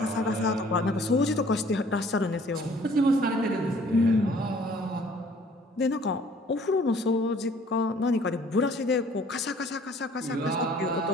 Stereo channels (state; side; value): normal; both; correlation 0.55